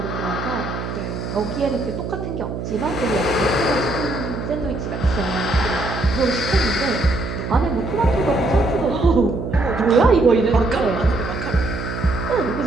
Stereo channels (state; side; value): noise; right; hum, 6 dB below the sound